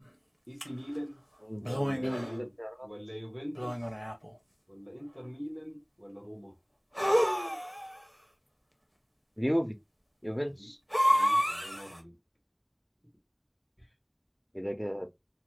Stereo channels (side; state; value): both; identical; correlation 1.00